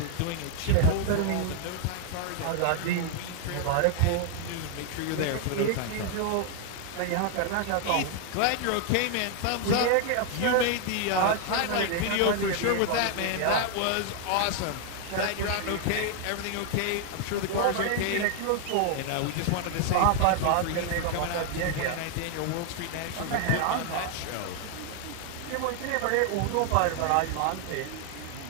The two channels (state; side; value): different; both; correlation 0.00